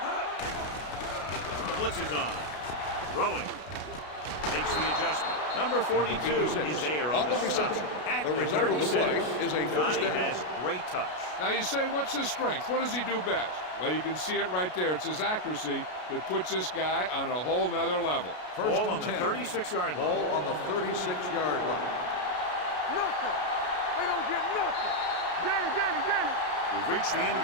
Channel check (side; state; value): right; late; 33 ms